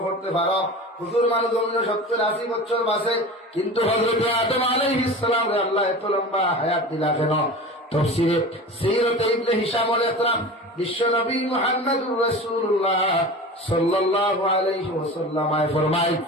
করতে পারো, হুজুর মানুষ জমিন 70-80 বছর বাঁচে, কিন্তু হযরতে আদম আলাইহিস সালাম রে আল্লাহ এত লম্বা হায়াত দিলা কেন? তাফসীরে সিরাতে ইবনে হিশামুল ইকরাম বিশ্ব নবী মুহাম্মদুর রাসূলুল্লাহ সাল্লাল্লাহু আলাইহি ওয়াসাল্লাম ফরমায়,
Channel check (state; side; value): normal; both; correlation 0.33